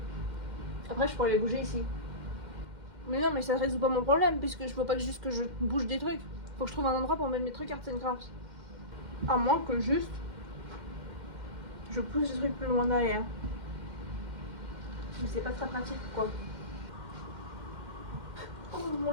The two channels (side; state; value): left; late; 2.1 ms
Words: Après je pourrais les bouger ici. Mais non, mais ça résout pas mon problème, puisque je peux pas juste que je bouge des trucs. Faut que je trouve un endroit pour mettre mes trucs Arts and Crafts. À moins que juste je pousse les trucs plus loin derrière. Mais c'est pas très pratique quoi. Oh mon